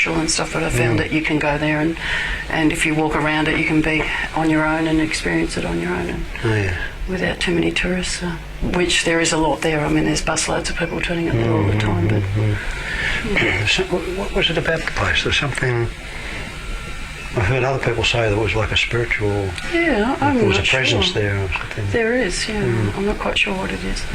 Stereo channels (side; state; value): both; identical; correlation 1.00